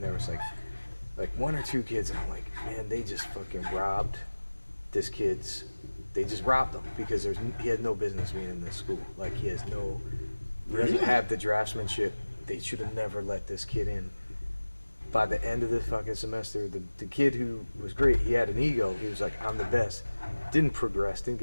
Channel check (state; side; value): inverted; both; correlation -1.00